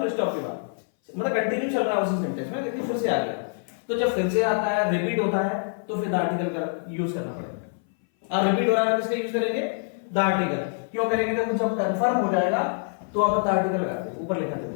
स्टॉप के बाद, मतलब कंटिन्यू चल रहा है उसी सेंटेंस में, लेकिन फिर से आ गया। तो जब फिर से आता है, रिपीट होता है, तो फिर द आर्टिकल का यूज करना पड़ेगा। और रिपीट हो रहा है तो इसका यूज करेंगे द आर्टिकल। क्यों करेंगे? तो जब कंफर्म हो जाएगा तो आप द आर्टिकल लगाते हैं, ऊपर लिखा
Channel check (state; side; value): silent; right; 59 dB below the other